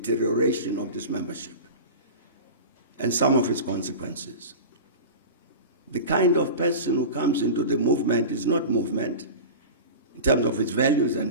of this membership and some of its consequences. The kind of person who comes into the movement is not movement in terms of its values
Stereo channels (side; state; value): both; inverted; correlation -0.31